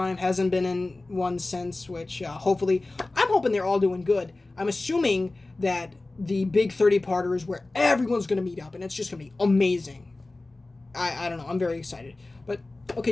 Hasn't been in one since, which hopefully... I'm hoping they're all doing good. I'm assuming that the big 30-parter is where everyone's going to meet up, and it's just going to be amazing. I don't know. I'm very excited. But,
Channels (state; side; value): quieter; right; 3.0 dB